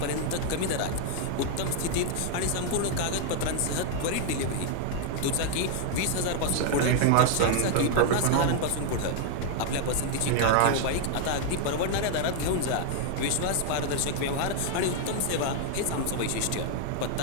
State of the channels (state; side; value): different; both; correlation 0.00